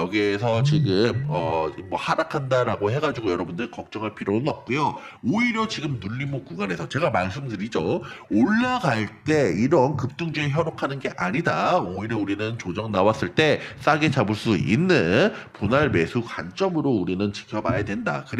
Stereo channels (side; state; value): both; identical; correlation 1.00